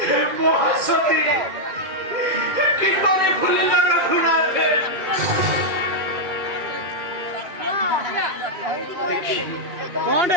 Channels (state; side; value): late; left; 2.2 ms